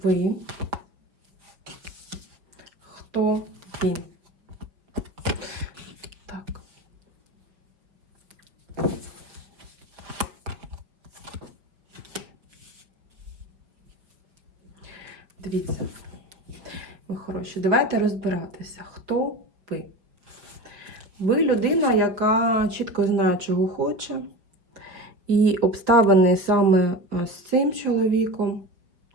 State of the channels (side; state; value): left; late; 5.2 ms